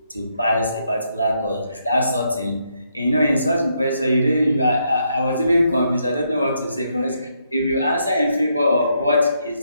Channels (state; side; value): inverted; both; correlation -0.77